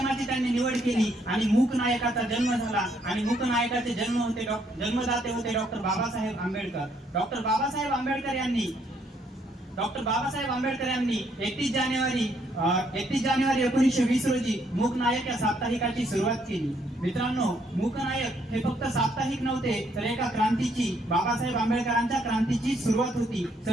त्यांनी निवड केली आणि मूक नायकाचा जन्म झाला। आणि मूक नायकाचे जन्मदाते होते डॉक्टर बाबासाहेब आंबेडकर। डॉक्टर बाबासाहेब आंबेडकर यांनी 31 जानेवारी 1920 रोजी मूक नायक या साप्ताहिकाची सुरुवात केली। मित्रांनो, मूक नायक हे फक्त साप्ताहिक नव्हते, तर एका क्रांतीची, बाबासाहेब आंबेडकरांच्या क्रांतीची सुरुवात होती,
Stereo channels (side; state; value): both; normal; correlation 0.70